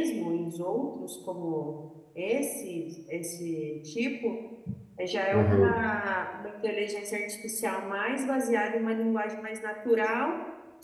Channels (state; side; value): identical; both; correlation 1.00